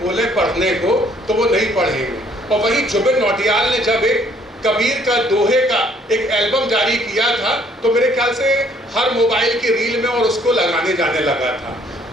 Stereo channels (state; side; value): normal; both; correlation 0.63